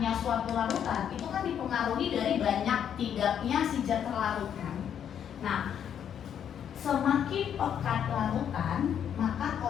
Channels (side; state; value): right; quieter; 8.9 dB